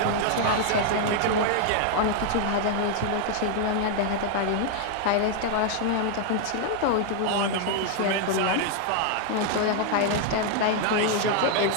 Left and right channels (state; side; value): different; both; correlation 0.00